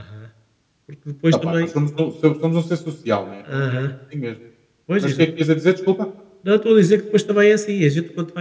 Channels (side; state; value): both; identical; correlation 1.00